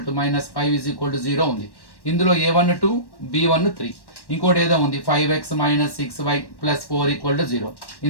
to minus 5 is equal to 0 ఉంది. ఇందులో a1 2 b1 3, ఇంకోటి ఏదో ఉంది 5x minus 6y plus 4 equal to 0.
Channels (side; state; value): right; late; 1.1 ms